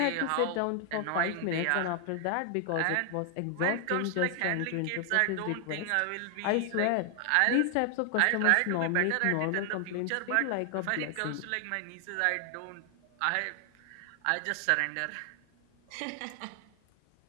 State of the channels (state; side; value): different; both; correlation 0.00